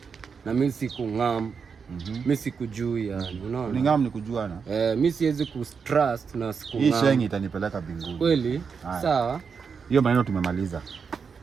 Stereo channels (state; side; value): quieter; left; 5.9 dB